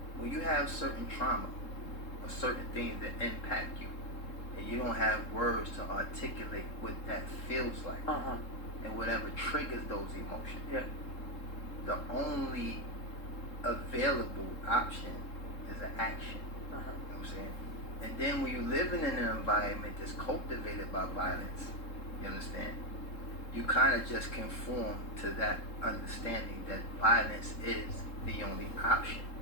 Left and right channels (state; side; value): late; right; 3.7 ms